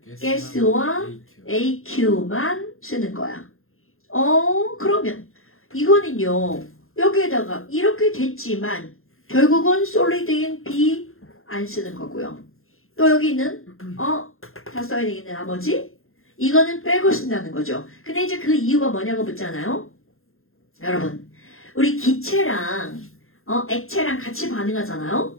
가스와 AQ만 쓰는 거야. 그러면 이거는요. 여기에다가 이렇게 됐지만 결국은 솔리드인 B 안 쓰는 거고요. 또 여기 있는 다 써야 되겠네 나머지 이거는 빼고 쓴다는 거죠. 근데 이제 그 이유가 뭐냐고 묻잖아요. 여러분 우리 기체랑 액체랑 같이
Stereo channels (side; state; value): right; late; 0.61 ms